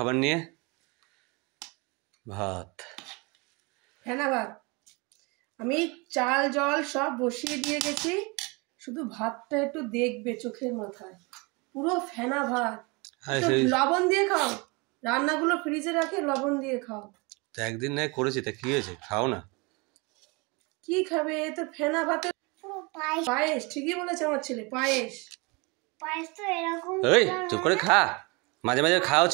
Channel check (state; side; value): quieter; left; 28.2 dB